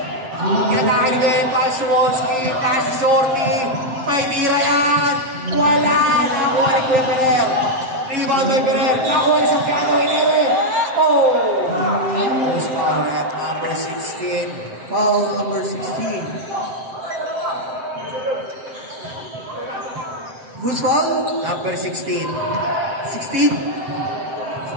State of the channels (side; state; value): left; late; 7.7 ms